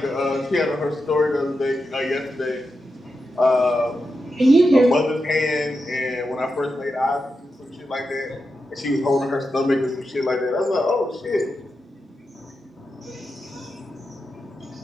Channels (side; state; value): both; normal; correlation 0.88